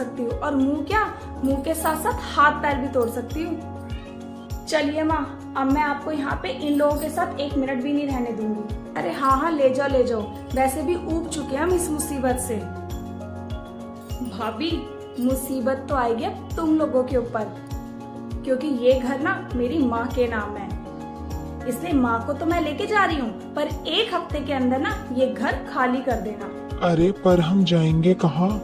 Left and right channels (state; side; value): identical; both; correlation 1.00